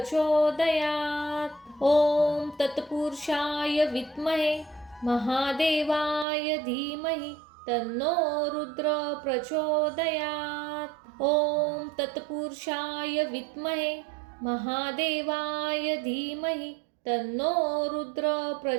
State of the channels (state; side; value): drops out; left; at 6.2 s